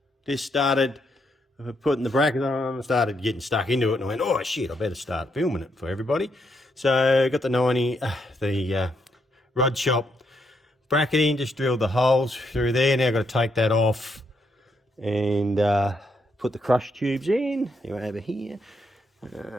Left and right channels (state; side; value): normal; both; correlation 0.77